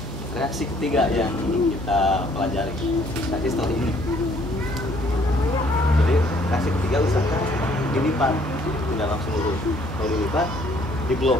reaksi ketiga yang kita pelajari tadi setelah ini. Jadi reaksi ketiga usahakan dilipat, tidak langsung lurus. Kalau dilipat,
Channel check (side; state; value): both; normal; correlation 0.62